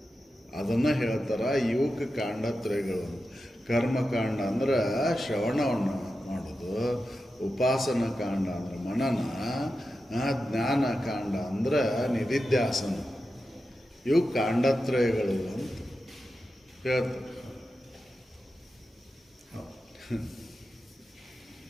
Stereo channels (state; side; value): normal; both; correlation 0.91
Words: ಅದನ್ನು ಹೇಳ್ತಾರ ಇವಕ್ಕೆ ಕಾಂಡತ್ರಯಗಳು. ಕರ್ಮಕಾಂಡ ಅಂದ್ರೆ ಶ್ರವಣವನ್ನು ಮಾಡೋದು, ಉಪಾಸನ ಕಾಂಡ ಅಂದ್ರೆ ಮನನ, ಜ್ಞಾನ ಕಾಂಡ ಅಂದ್ರೆ ನಿಧಿಧ್ಯಾಸನ. ಇವು ಕಾಂಡತ್ರಯಗಳು ಅಂತ ಹೇಳ್ತಾರೆ.